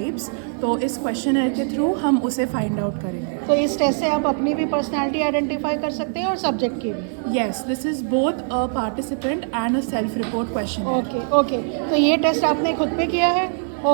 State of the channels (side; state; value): left; silent; 59 dB below the other